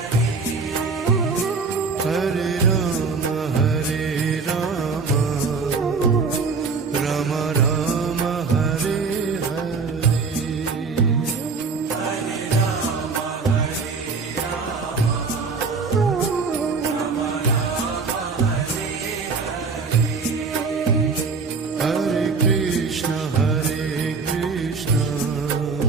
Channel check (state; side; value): quieter; left; 4.7 dB